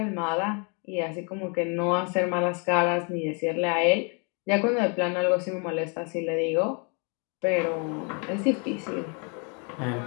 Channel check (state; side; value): quieter; right; 35.9 dB